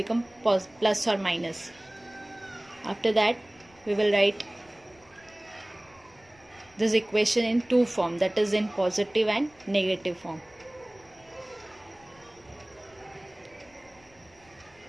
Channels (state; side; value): noise; left; rumble, 29 dB below the sound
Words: plus or minus. After that we will write this equation in two form, that is in positive and negative form.